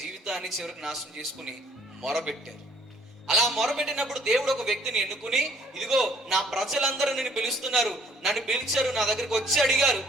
చివరికి నాశనం చేసుకుని మొరబెట్టారు. అలా మొరబెట్టినప్పుడు దేవుడు ఒక వ్యక్తిని ఎన్నుకుని, ఇదిగో నా ప్రజలందరూ నిన్ను పిలుస్తున్నారు, నన్ను పిలిచారు, నా దగ్గరికి వచ్చి అడిగారు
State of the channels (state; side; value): normal; both; correlation 0.60